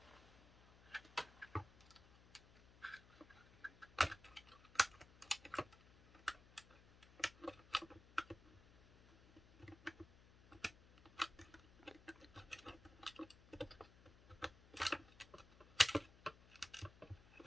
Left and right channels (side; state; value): left; noise; hum, 22 dB below the sound